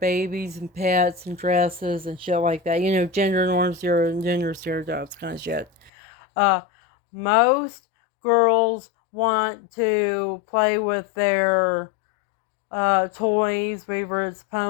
and pets and dresses and shit like that. You know, gender norms, gender stereotypes kind of shit. Uh, Most girls want to play with their toys, whether it's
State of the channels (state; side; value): drops out; right; at 5.9 s